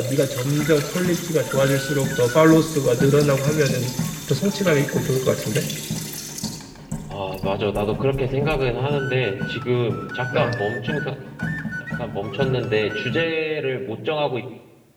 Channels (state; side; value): identical; both; correlation 1.00